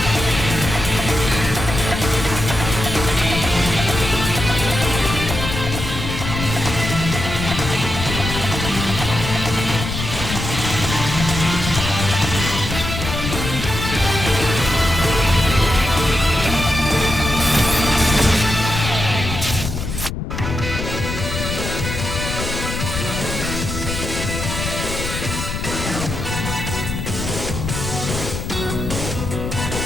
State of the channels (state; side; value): noise; left; rumble, 5 dB below the sound